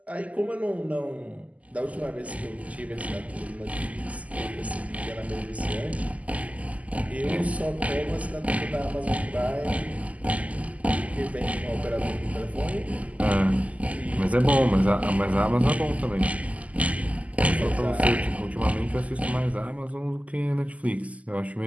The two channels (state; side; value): late; left; 0.071 ms